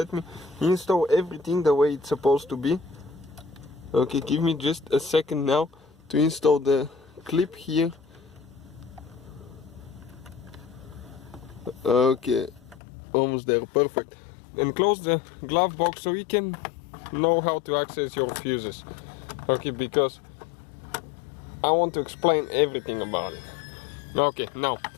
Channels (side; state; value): right; drops out; at 12.8 s